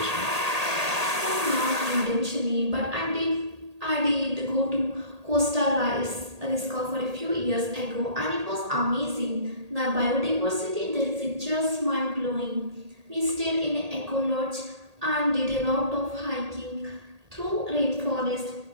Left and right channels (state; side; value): late; left; 1.8 ms